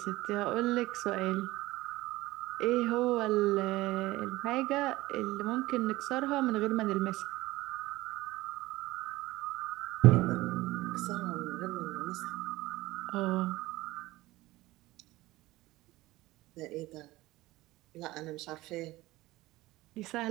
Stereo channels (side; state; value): left; quieter; 18.5 dB